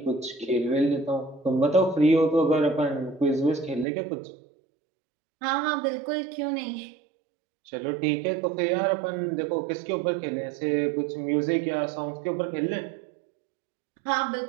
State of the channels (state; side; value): drops out; left; at 3.9 s